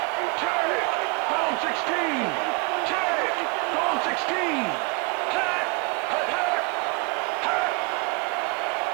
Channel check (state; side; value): quieter; left; 33.1 dB